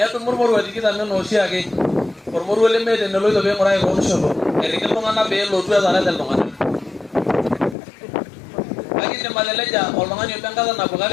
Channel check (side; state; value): right; drops out; at 7.8 s